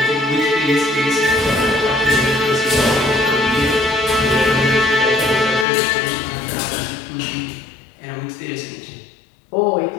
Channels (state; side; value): drops out; right; at 5.7 s